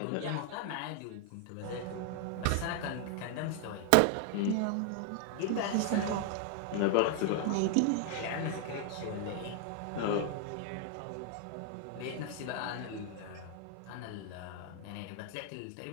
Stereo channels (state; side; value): different; both; correlation 0.00